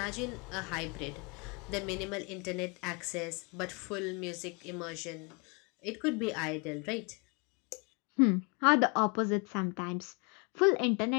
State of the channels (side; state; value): right; quieter; 32.4 dB